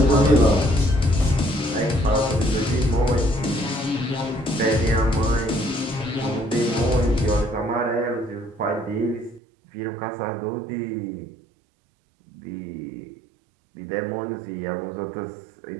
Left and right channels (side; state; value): left; drops out; at 9.4 s